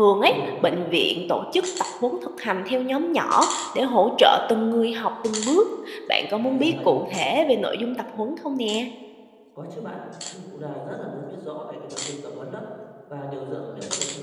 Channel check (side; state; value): both; identical; correlation 1.00